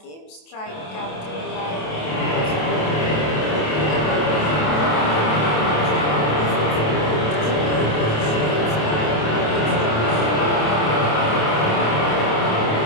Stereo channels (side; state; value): right; late; 27 ms